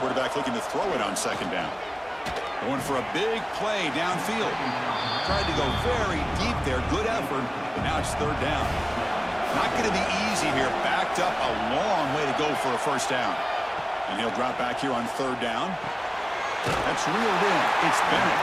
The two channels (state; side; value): identical; both; correlation 1.00